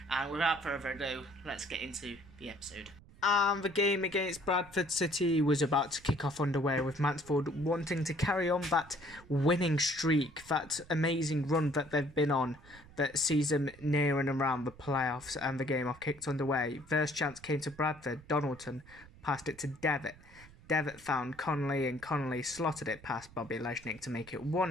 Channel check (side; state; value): right; noise; rumble, 22 dB below the sound